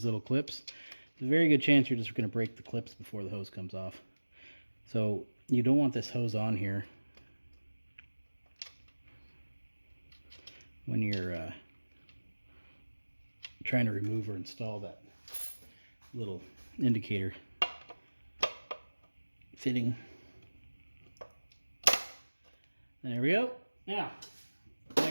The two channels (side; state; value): both; inverted; correlation -1.00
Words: little clips, there's a very good chance you're just going to break the clips before the hose comes off. So you don't want this hose on here when you're trying to remove or install that little indicator fitting. There we go. Now,